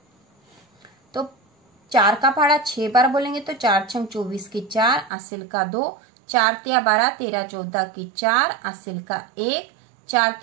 तो 4 का पहाड़ा 6 बार बोलेंगे तो 4 छंग 24 की 4, असिल का 2, 4 तिया 12, 13 14 की 4, असिल का 1, 4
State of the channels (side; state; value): left; drops out; at 5.1 s